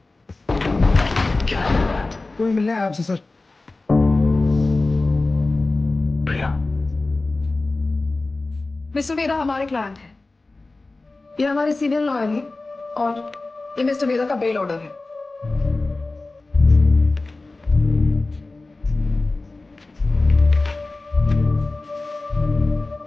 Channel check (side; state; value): right; quieter; 3.3 dB